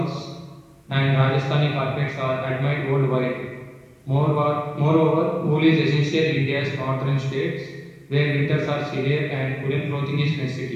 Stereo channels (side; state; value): both; identical; correlation 1.00